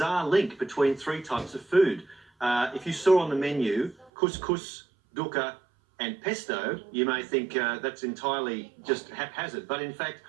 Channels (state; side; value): drops out; left; at 4.1 s